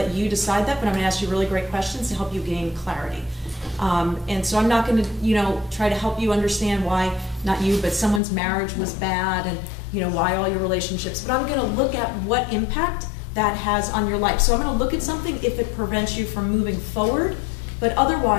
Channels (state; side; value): drops out; right; at 8.2 s